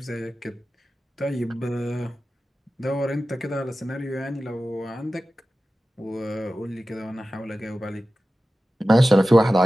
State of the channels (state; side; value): normal; both; correlation 0.95